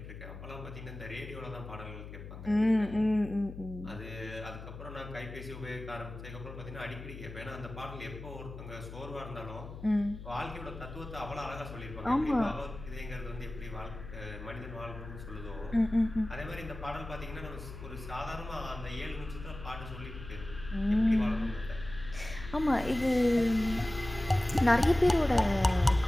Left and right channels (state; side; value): noise; left; hum, 12 dB below the sound